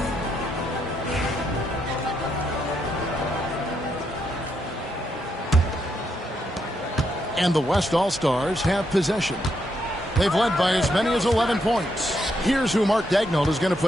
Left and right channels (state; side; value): normal; both; correlation 0.78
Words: And the West All-Stars have possession. They've led by as many as 11 points. Here's who Mark Daigneault is going to